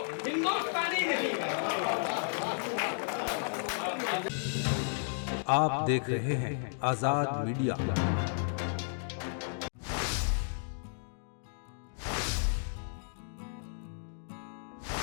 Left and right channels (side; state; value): right; silent; digital silence